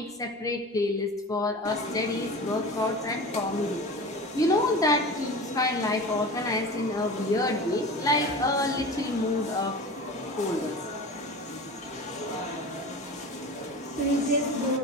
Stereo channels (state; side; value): normal; both; correlation 0.34